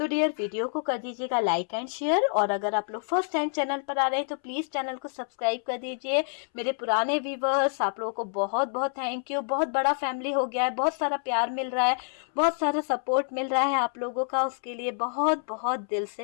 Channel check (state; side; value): silent; right; 60 dB below the other